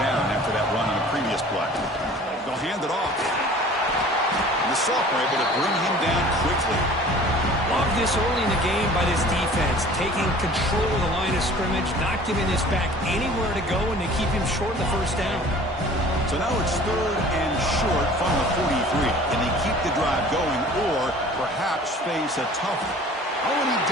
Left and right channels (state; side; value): normal; both; correlation 0.47